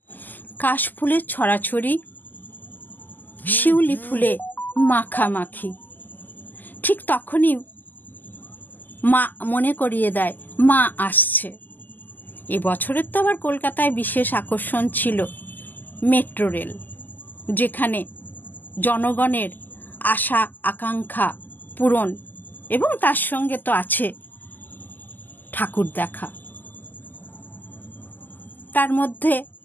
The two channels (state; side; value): late; right; 0.086 ms